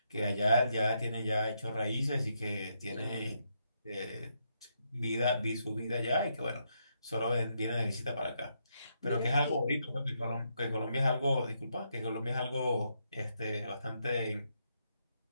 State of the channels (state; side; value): inverted; both; correlation -0.79